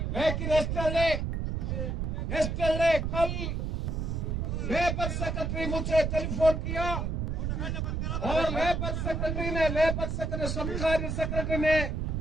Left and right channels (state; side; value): noise; right; rumble, 1 dB below the sound